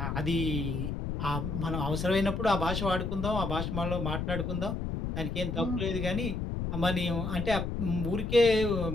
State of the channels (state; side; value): noise; left; rumble, 3 dB below the sound